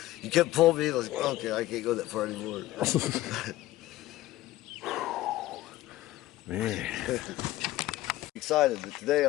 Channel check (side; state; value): right; quieter; 16.2 dB